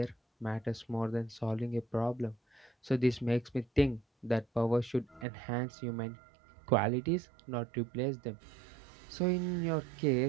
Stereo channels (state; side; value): drops out; left; at 5.2 s